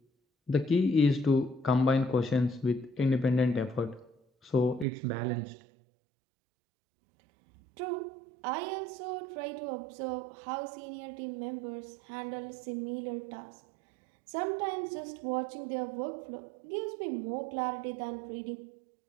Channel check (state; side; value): drops out; left; at 4.9 s